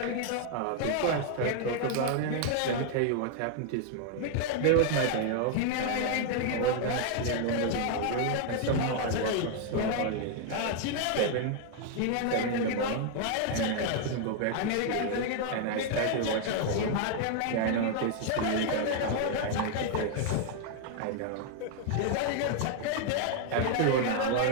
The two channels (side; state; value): both; different; correlation 0.00